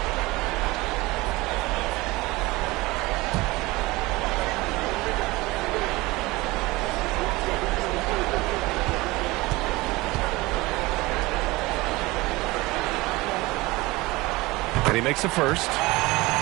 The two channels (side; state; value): left; quieter; 21.3 dB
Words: And he makes the first.